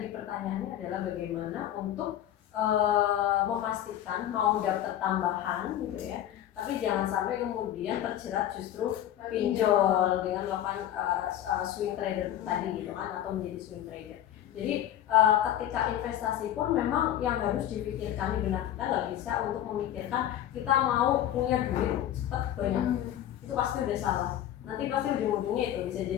pertanyaannya adalah bagaimana untuk memastikan mau dapat tambahan gitu ya, tapi jangan sampai kemudian terjerat justru pinjol dengan melakukan swing trader tadi gitu kan, atau menjadi swing trader. Jadi ketika investasi pun memang yang harus dipikirkan di benak kita, nggak bisa untuk memikirkan kita mau punya duit cepat banyak. Itu pasti udah salah. Nanti pasti ujung-ujungnya itu bisa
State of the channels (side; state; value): right; quieter; 11.6 dB